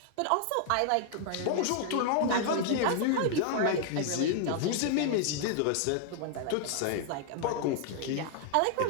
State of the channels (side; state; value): both; different; correlation 0.00